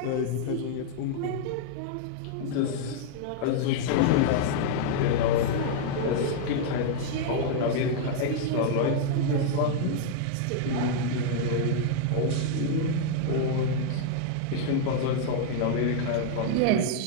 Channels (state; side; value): different; both; correlation -0.01